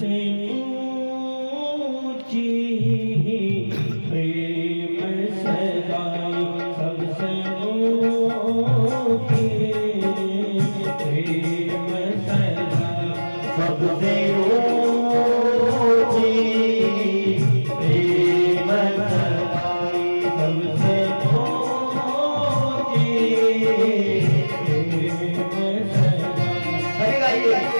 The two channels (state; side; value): inverted; both; correlation -1.00